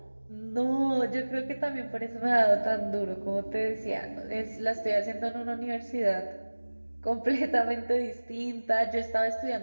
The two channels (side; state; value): both; inverted; correlation -1.00